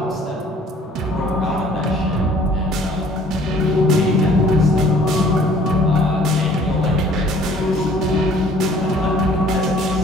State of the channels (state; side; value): normal; both; correlation 0.55